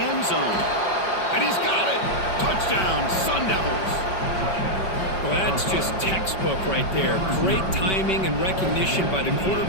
end zone. And he's got it. Touchdown, Sun Devils. Well, that's just textbook right there. Great timing and recognition by the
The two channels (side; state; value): right; late; 5.2 ms